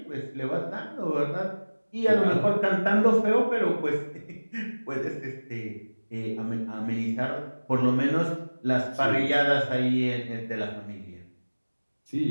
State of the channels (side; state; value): both; inverted; correlation -1.00